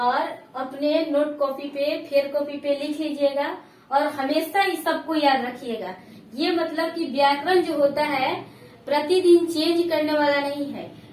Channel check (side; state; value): both; identical; correlation 1.00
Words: अपने नोट कॉपी पे, फेयर कॉपी पे लिख लीजिएगा, और हमेशा इस सबको याद रखिएगा। ये मतलब कि व्याकरण जो होता है प्रतिदिन चेंज करने वाला नहीं है।